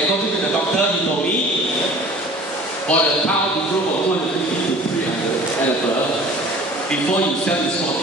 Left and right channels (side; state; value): both; normal; correlation 0.45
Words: to the doctor, he told me, for the cow to grow from 250 to 300 and above, before you sell the